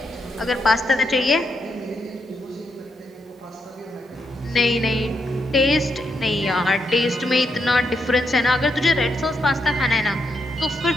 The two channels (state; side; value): normal; both; correlation 0.80